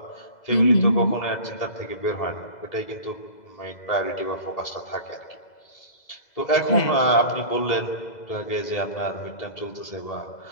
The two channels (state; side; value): late; right; 2.0 ms